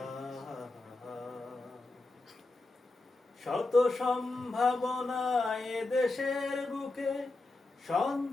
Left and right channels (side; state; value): right; quieter; 3.1 dB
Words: শত সম্ভাবনায় দেশের বুকে,